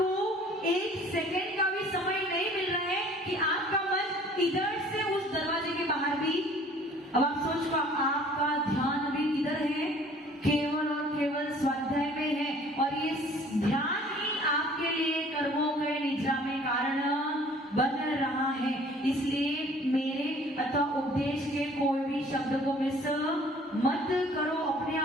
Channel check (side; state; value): both; normal; correlation 0.53